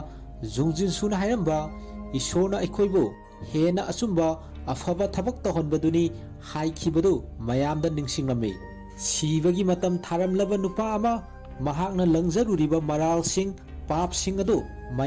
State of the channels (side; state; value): both; identical; correlation 1.00